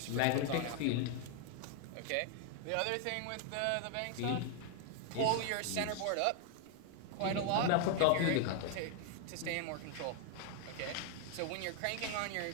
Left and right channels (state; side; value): different; both; correlation 0.00